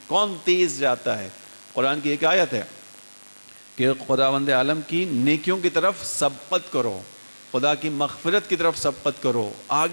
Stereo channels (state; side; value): inverted; both; correlation -1.00